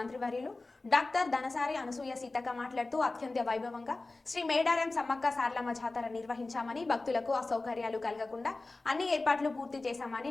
డాక్టర్ ధనసారి అనసూయ సీతక్క మాట్లాడుతూ అత్యంత వైభవంగా శ్రీ మేడారం సమ్మక్క సారలమ్మ జాతర నిర్వహించామని, భక్తులకు అసౌకర్యాలు కలగకుండా అన్ని ఏర్పాట్లు పూర్తి చేశామని,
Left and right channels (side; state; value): right; quieter; 3.3 dB